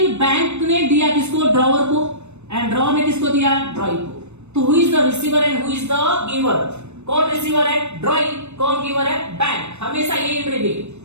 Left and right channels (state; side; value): late; left; 0.81 ms